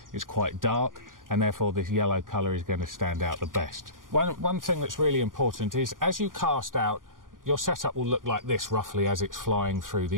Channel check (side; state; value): left; late; 0.90 ms